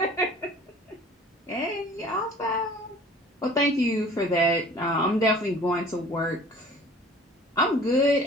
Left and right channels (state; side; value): normal; both; correlation 0.46